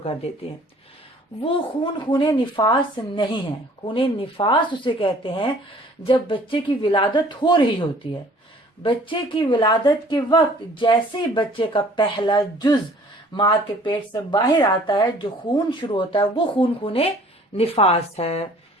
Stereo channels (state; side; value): normal; both; correlation 0.54